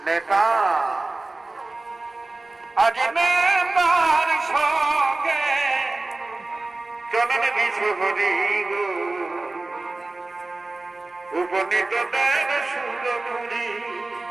নেতা। আজ নেতার সঙ্গে চলেন বিশ্বহরি গো উপনীত দেন সুরপুরি।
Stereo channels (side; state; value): left; quieter; 3.2 dB